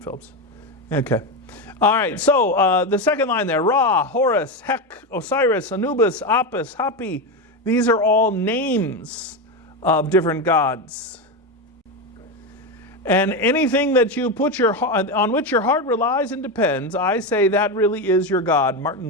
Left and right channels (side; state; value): both; normal; correlation 0.14